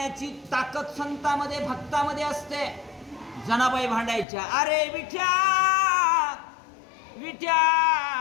ताकद संतामध्ये भक्तामध्ये असते जनाबाई भांडायच्या अरे विठ्या विठ्या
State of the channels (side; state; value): right; drops out; at 4.2 s